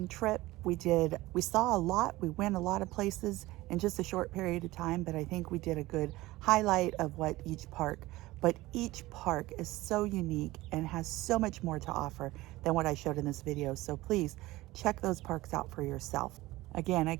trip. We saw a lot. We went a lot of places in just a short period of time, but I think we did a good highlight of what each park. But each park is so unique and has so much more to offer than what I showed in this video. So please check those parks out for yourself. Again, I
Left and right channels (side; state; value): left; quieter; 18.6 dB